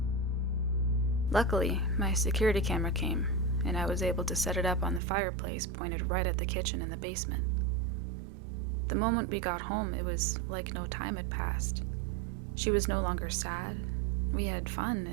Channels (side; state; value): left; drops out; at 5.0 s